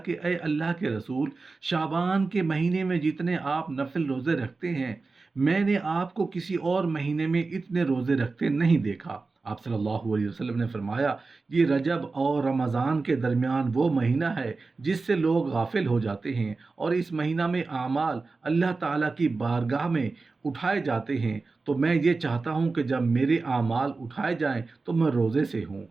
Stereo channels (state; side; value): quieter; left; 3.9 dB